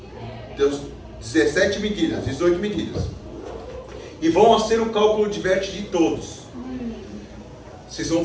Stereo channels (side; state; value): both; identical; correlation 1.00